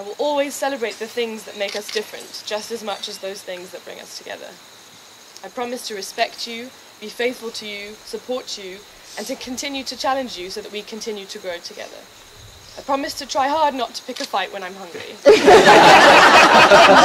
will always celebrate the things that make us different, just as much as those things that bring us together. I promise to respect you, be faithful to you, support you, and to continue to challenge you so that we continue to grow together. I promise to try hard not to pick a fight when I'm hungry.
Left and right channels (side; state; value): both; identical; correlation 1.00